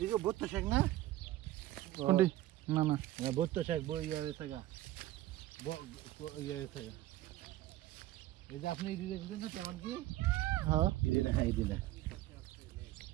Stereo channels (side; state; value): left; quieter; 15.5 dB